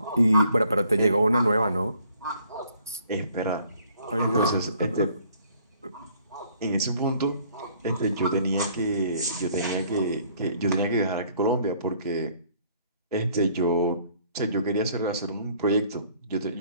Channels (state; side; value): inverted; both; correlation -0.61